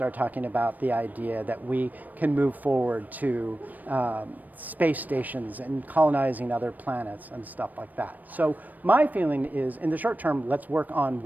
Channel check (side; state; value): left; late; 0.083 ms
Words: talking about the idea that we can move forward to space stations and colonizing other planets and stuff like that. So my feeling is, in the short term, let's work on